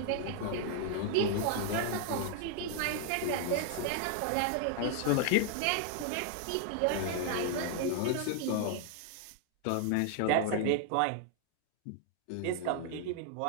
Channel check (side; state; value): both; different; correlation 0.00